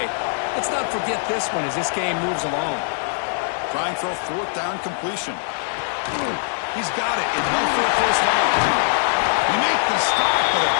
Let's not forget this one as this game moves along. Trying for a fourth down completion. He's got it. Enough for a first down. We make the stop, but a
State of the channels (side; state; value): right; silent; 64 dB below the other